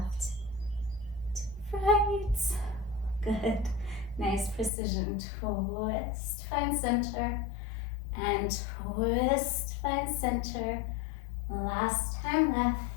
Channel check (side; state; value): right; drops out; at 4.7 s